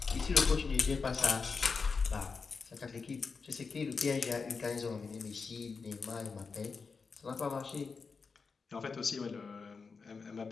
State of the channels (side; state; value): right; quieter; 4.9 dB